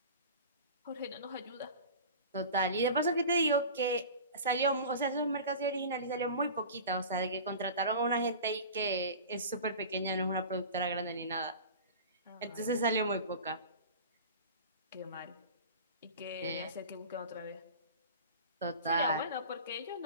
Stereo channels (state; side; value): inverted; both; correlation -0.36